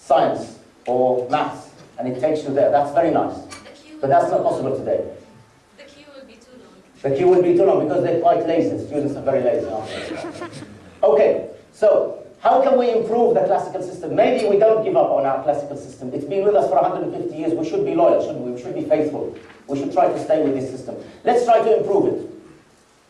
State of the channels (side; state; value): both; identical; correlation 1.00